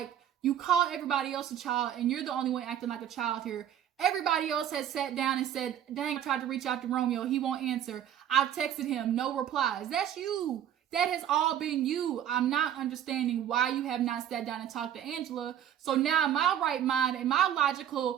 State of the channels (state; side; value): quieter; left; 10.3 dB